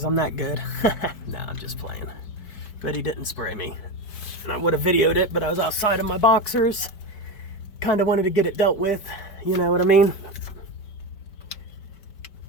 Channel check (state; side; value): late; right; 5.1 ms